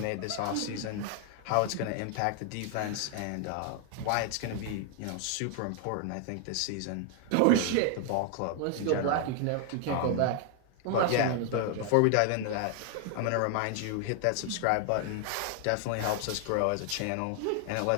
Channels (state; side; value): different; both; correlation 0.00